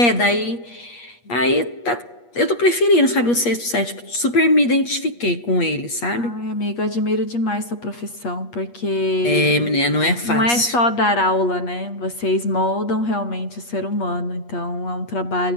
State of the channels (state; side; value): late; right; 8.4 ms